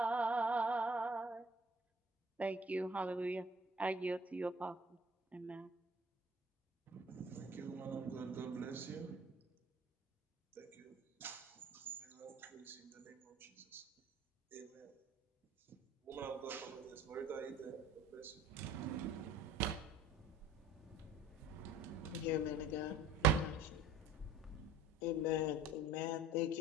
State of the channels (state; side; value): normal; both; correlation 0.50